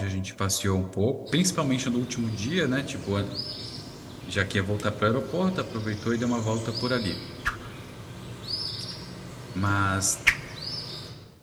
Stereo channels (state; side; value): identical; both; correlation 1.00